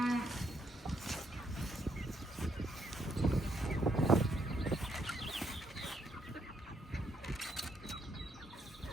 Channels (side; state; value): both; normal; correlation 0.75